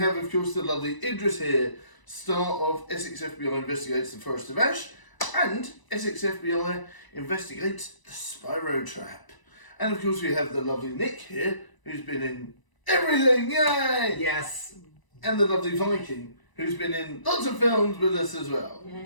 of course the lovely Idris here, star of Essex FBI Investigates the Forest of Ash and Essex FBI Investigates the Spyro Trap. And of course we have the lovely Nick here, who's been in everything, yay! Yes. And the lovely Viking, who's been in lots of films with us as well. Yeah.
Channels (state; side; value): late; right; 1.0 ms